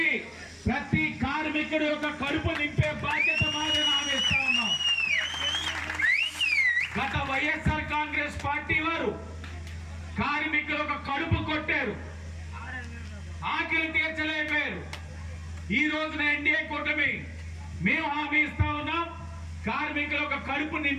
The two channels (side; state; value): both; identical; correlation 1.00